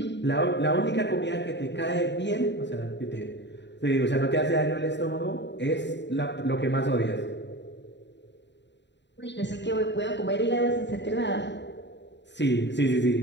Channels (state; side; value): late; right; 0.52 ms